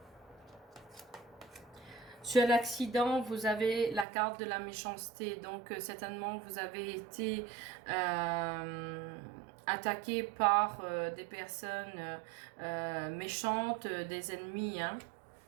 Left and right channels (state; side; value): drops out; left; at 4.0 s